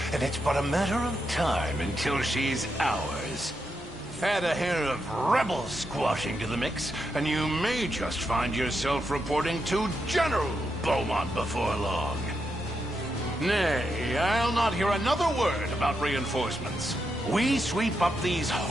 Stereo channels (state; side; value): normal; both; correlation 0.84